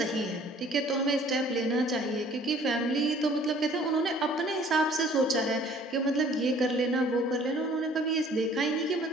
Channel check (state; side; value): normal; both; correlation 0.54